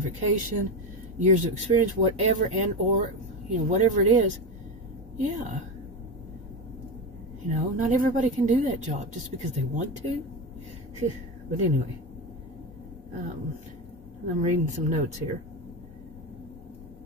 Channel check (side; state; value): both; normal; correlation 0.17